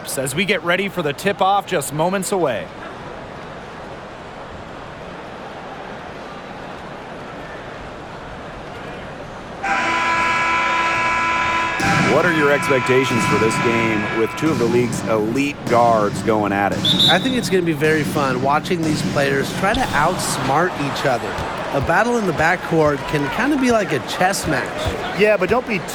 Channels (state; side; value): identical; both; correlation 1.00